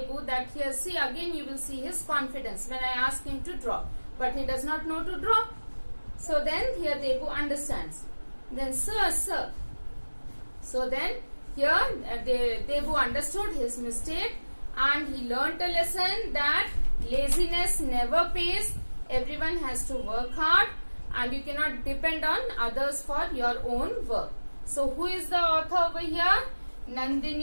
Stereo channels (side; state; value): both; inverted; correlation -1.00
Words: that here, see, again you will see his confidence when I ask him to draw. But he does not know to draw. So then here Debu understands. Then, sir. So then here Debu understood his mistake and he learnt a lesson that laziness never pays. Everyone has to work hard and you cannot depend on others for your own work. So who is the author over here?